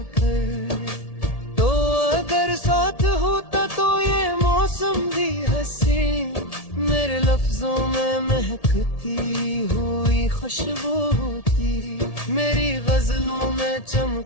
तो अगर साथ होता तो ये मौसम भी हंसी। मेरे लफ्जों में महकती हुई खुशबू होती। मेरी गजलों में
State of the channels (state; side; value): late; right; 1.8 ms